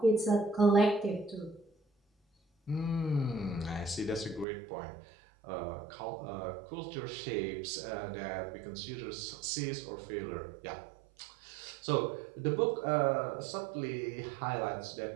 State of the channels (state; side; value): drops out; left; at 4.5 s